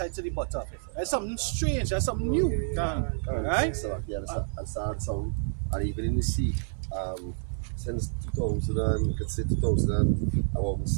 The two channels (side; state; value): left; silent; 59 dB below the other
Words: to the bottom. That's something strange, that's something new. Right? So, yeah, I saw some, and even in the sea, since 2000, you could say 2000, about